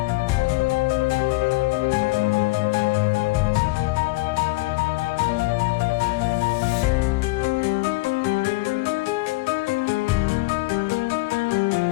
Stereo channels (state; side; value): quieter; right; 23.0 dB